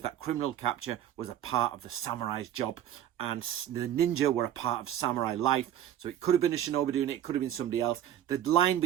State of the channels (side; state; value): left; quieter; 11.1 dB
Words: that criminal capture was a part of the samurai's job, and the ninja were a part of samurai life. So it could have been a shinobi doing it, it could have been somebody else. The line